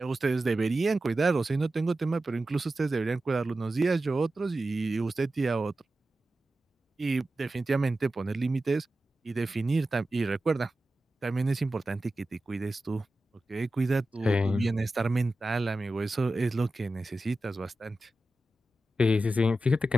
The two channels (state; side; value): normal; both; correlation 0.93